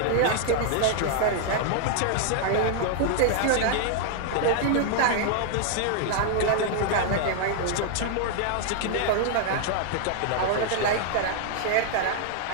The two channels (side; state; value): both; different; correlation 0.00